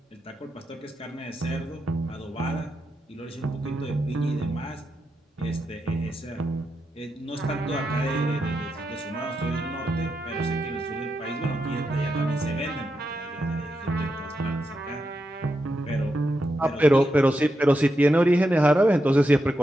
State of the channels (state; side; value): normal; both; correlation 0.86